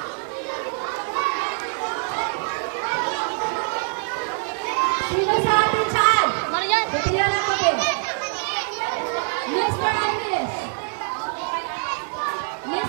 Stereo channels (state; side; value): silent; left; 58 dB below the other